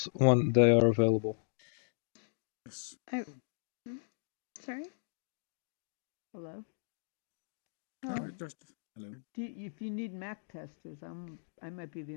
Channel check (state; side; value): silent; right; digital silence